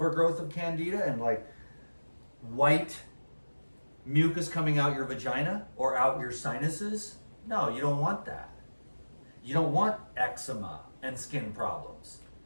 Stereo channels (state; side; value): inverted; both; correlation -1.00